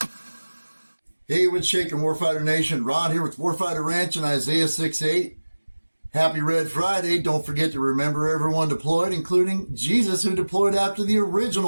Hey, what's shaking, Warfighter Nation? Ron here with Warfighter Ranch and Isaiah 6:8. Happy Red Friday. Don't forget to remember everyone deployed, including Jesus, who deployed after the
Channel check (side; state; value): both; inverted; correlation -1.00